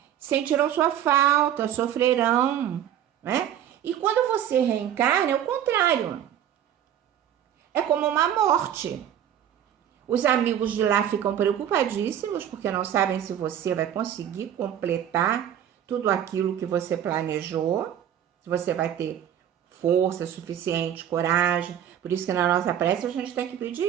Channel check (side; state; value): left; quieter; 10.2 dB